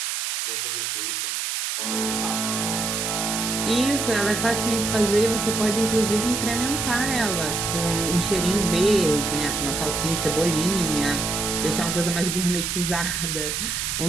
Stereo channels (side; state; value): right; noise; hiss, 2 dB below the sound